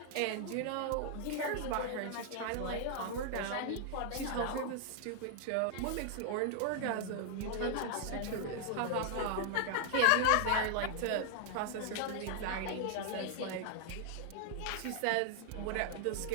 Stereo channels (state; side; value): different; both; correlation 0.00